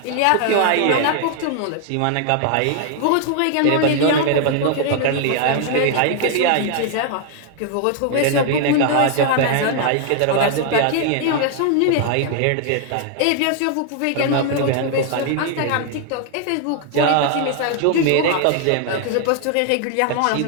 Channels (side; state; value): both; different; correlation 0.00